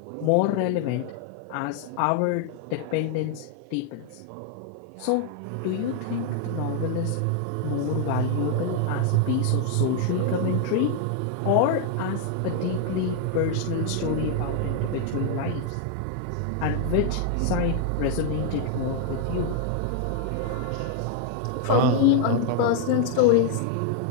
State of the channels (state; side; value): different; both; correlation 0.00